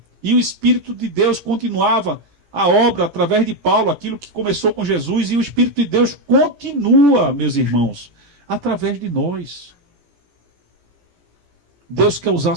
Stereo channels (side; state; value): left; late; 17 ms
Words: E o Espírito de Deus continuava a obra através de Paulo, aquilo que começou com Jesus, e o Espírito de Deus continua, meus irmãos, através de nós. Deus quer usar a